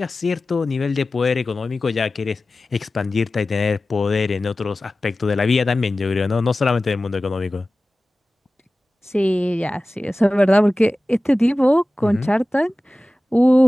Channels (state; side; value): normal; both; correlation 0.96